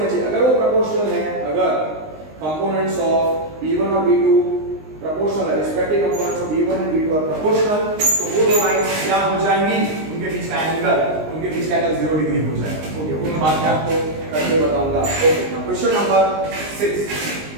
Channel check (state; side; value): late; left; 19 ms